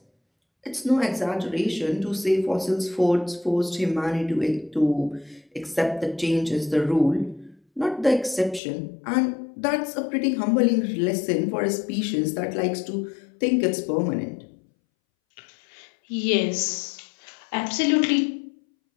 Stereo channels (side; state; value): right; drops out; at 8.6 s